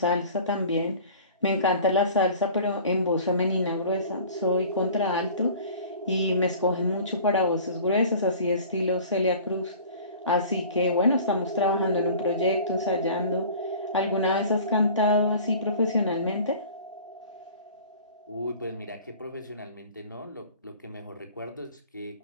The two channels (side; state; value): both; inverted; correlation -0.44